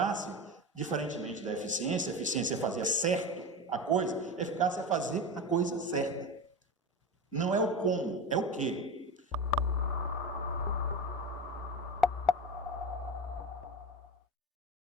diferentemente da eficiência, a eficiência é fazer certo a coisa, a eficácia é fazer a coisa certa. Não é o como, é o que.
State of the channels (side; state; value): both; normal; correlation 0.25